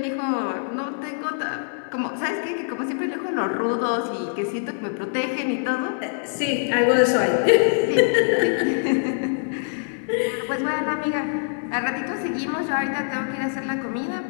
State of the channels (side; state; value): right; silent; 63 dB below the other